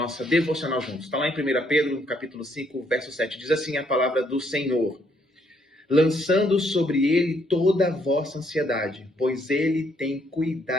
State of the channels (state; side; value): normal; both; correlation 0.70